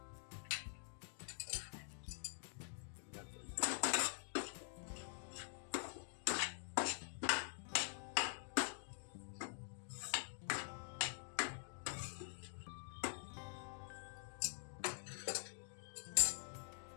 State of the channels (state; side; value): silent; right; digital silence